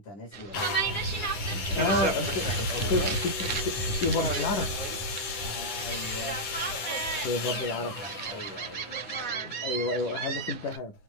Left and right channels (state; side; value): late; right; 10 ms